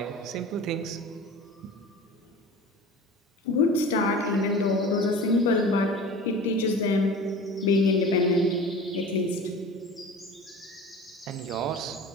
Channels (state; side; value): normal; both; correlation 0.37